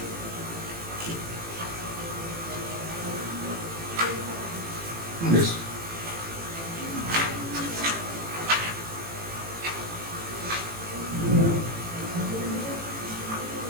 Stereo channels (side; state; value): left; late; 18 ms